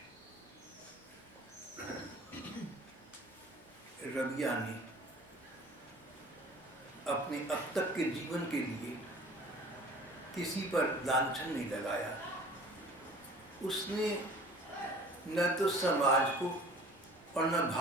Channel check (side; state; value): both; normal; correlation 0.47